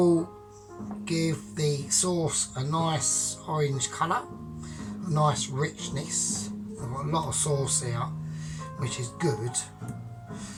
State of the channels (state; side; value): identical; both; correlation 1.00